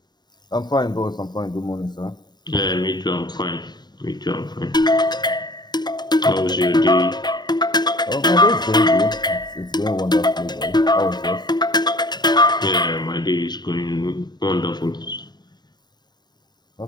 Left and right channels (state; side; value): late; right; 0.20 ms